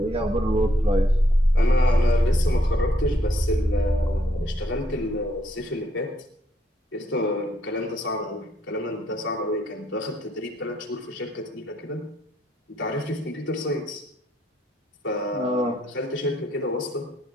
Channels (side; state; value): both; normal; correlation 0.71